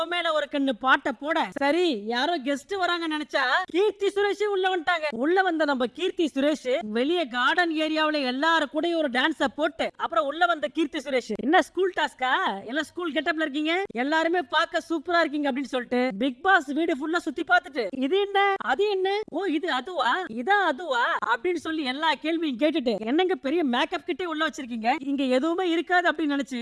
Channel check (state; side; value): identical; both; correlation 1.00